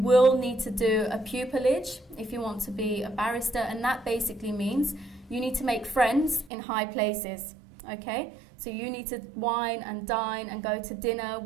need to do a pupillage if you want to be a barrister, and that basically means you need to make friends in high places, okay? So you need to wine and dine and go to dinner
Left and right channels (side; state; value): left; drops out; at 6.5 s